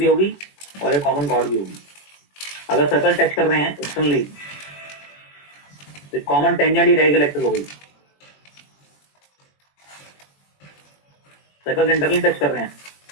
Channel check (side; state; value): right; late; 21 ms